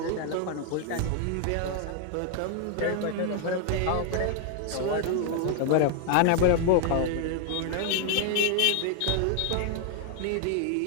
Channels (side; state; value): both; different; correlation 0.00